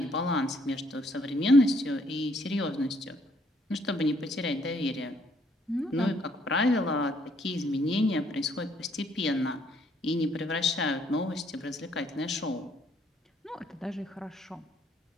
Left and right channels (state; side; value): normal; both; correlation 0.67